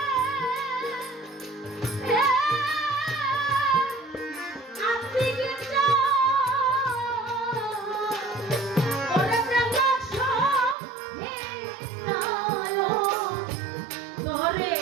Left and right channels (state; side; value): drops out; left; at 10.8 s